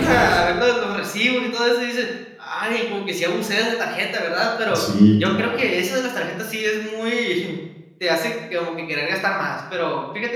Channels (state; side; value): identical; both; correlation 1.00